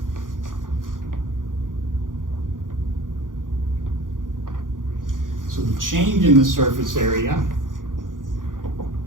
So the change in the surface area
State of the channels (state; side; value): late; left; 0.89 ms